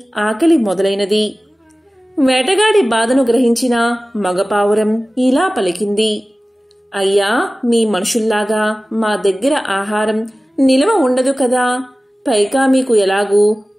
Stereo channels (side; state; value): both; normal; correlation 0.97